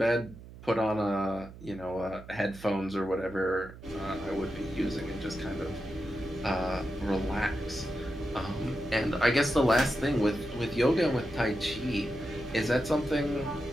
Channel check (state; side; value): noise; right; hum, 16 dB below the sound